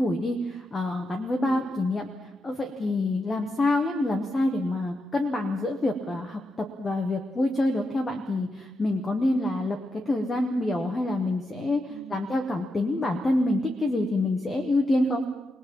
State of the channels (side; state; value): both; normal; correlation 0.86